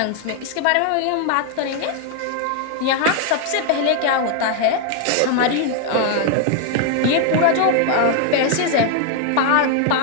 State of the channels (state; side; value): different; both; correlation 0.00